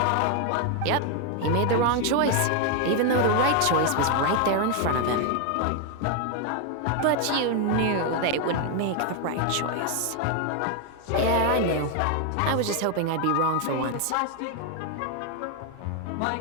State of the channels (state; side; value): different; both; correlation 0.01